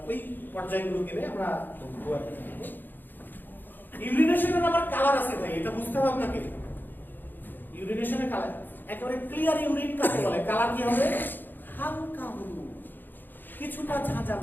ওই পর্যায়গুলো গেলে আমরা ইউরিনেশনের আবার কালার আছে ভাই, এটা বুঝতে হবে আপনাকে। ইউরিনেশনের কালার একেবারে ক্লিয়ার ইউরিন কাকে বলে? কালার কি হবে? হালকা হলুদ, কিছুটা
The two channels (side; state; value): right; late; 0.091 ms